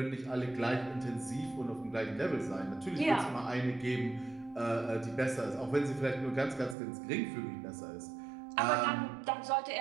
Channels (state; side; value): drops out; left; at 6.8 s